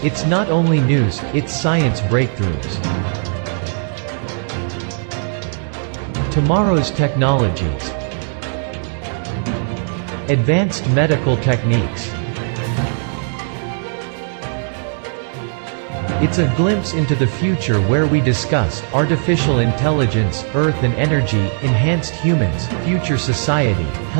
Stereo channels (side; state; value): left; silent; digital silence